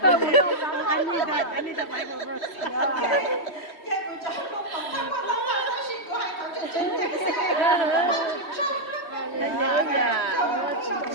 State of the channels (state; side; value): late; right; 3.2 ms